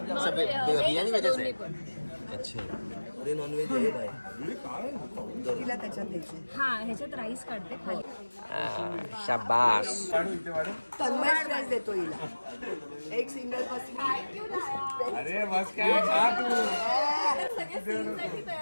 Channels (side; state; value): both; inverted; correlation -1.00